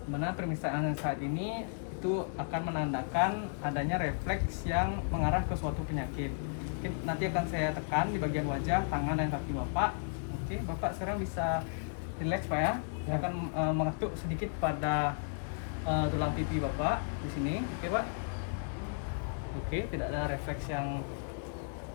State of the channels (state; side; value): silent; right; digital silence